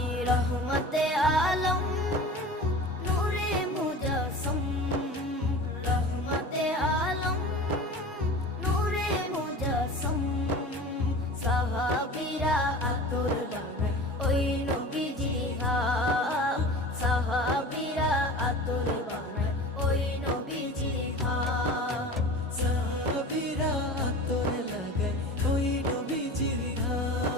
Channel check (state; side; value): normal; both; correlation 0.36